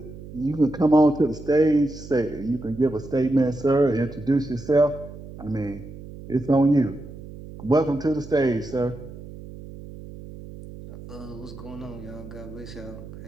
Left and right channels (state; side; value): noise; right; hum, 14 dB below the sound